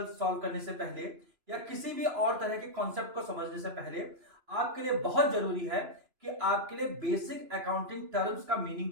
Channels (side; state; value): left; late; 2.9 ms